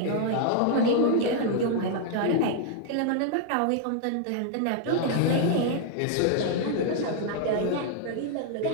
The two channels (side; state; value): both; different; correlation 0.00